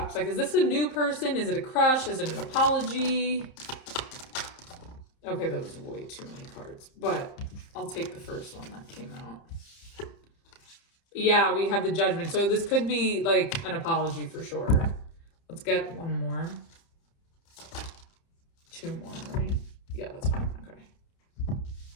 Like, is this a new person? Is it a crush? Is it an apology? Okay, that was way too many cards, but I'll take the first one that came out. Yeah, we have the Judgment. So this could be like an apology for sure. Let's get one more. Two more, right? Yeah, that's fine. Okay.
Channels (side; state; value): right; late; 30 ms